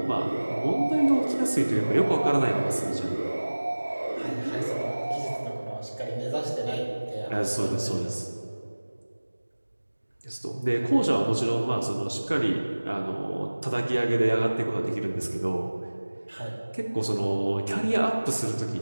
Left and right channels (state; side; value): inverted; both; correlation -1.00